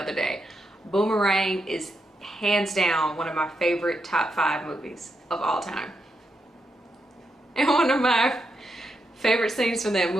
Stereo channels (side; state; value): both; normal; correlation 0.84